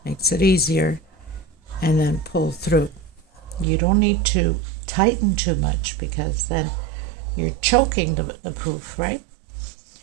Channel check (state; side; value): drops out; left; at 3.7 s